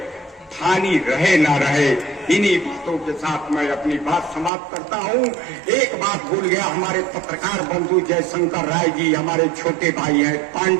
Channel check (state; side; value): drops out; left; at 4.5 s